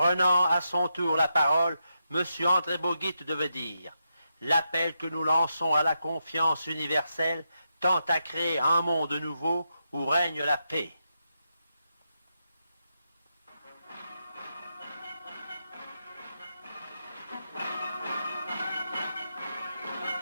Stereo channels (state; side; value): inverted; both; correlation -0.84